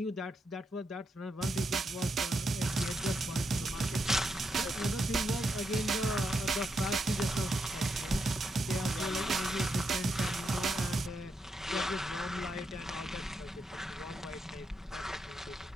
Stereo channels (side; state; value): both; normal; correlation 0.82